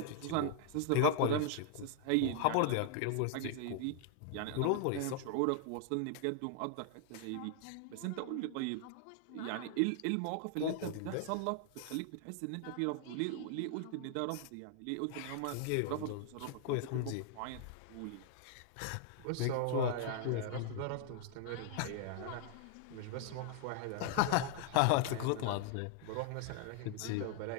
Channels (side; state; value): both; different; correlation -0.01